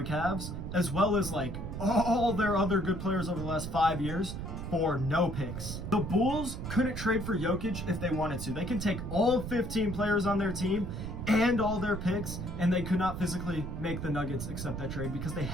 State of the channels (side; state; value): right; noise; rumble, 6 dB below the sound